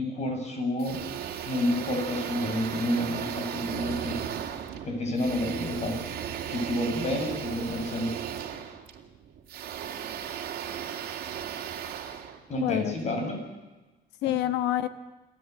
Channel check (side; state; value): both; normal; correlation 0.48